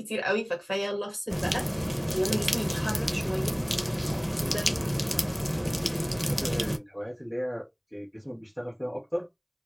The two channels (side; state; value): both; identical; correlation 1.00